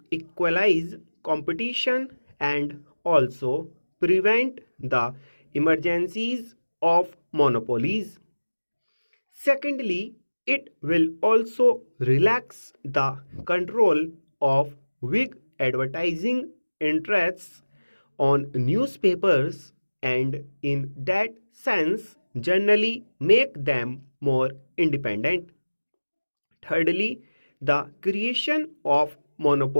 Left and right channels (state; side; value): inverted; both; correlation -1.00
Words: equalize competition and also prevent the emergencies of monopolies. Secondly, it will also relax the control of big advertising interests on newspapers, and in that sense generally make them more independent. Thirdly, the creation of